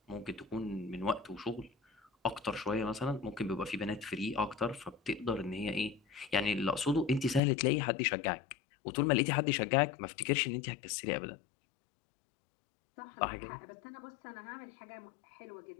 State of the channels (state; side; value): drops out; right; at 7.4 s